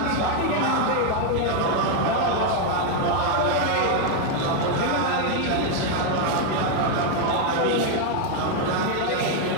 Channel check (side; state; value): both; different; correlation 0.01